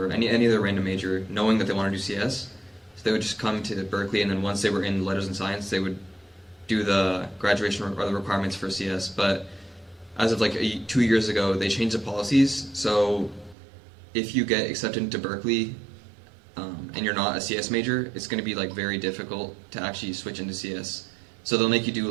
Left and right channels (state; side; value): drops out; left; at 13.6 s